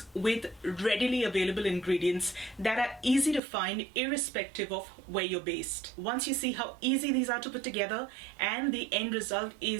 with readily available ingredients that are easy to find irrespective of where you're based. Once you see how easy these are to put together and the end result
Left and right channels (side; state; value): left; drops out; at 3.4 s